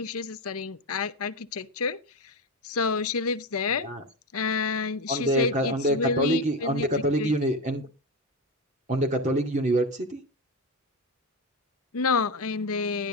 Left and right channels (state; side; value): normal; both; correlation 0.16